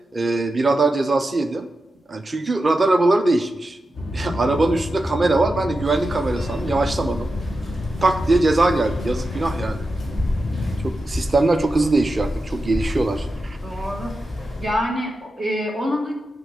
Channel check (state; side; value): normal; both; correlation 0.90